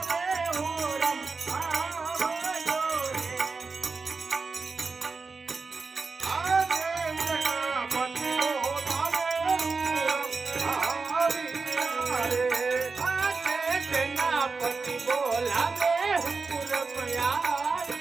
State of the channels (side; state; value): left; quieter; 4.4 dB